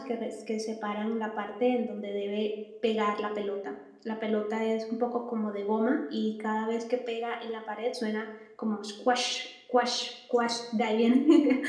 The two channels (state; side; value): identical; both; correlation 1.00